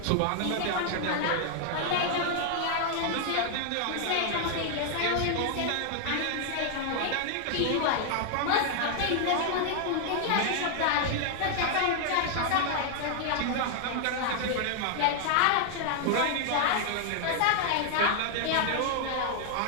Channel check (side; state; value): both; different; correlation 0.00